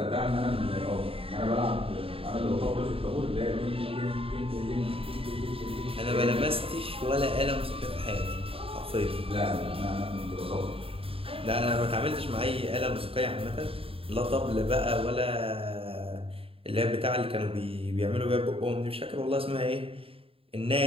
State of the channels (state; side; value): late; left; 0.27 ms